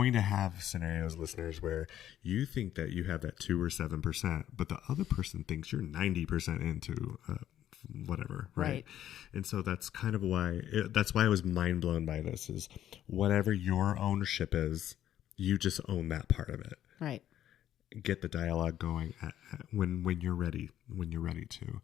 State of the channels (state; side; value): quieter; right; 11.5 dB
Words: to have scenarios, listeners, where you think that you have that 2 or 7%, but the other person thinks you're 90% into whatever, right? And so that's kind of why, that's why I was mind blown by this, is whatever your ownership is, you just own that part of it. Right. Get the dialogue going when you're ready to.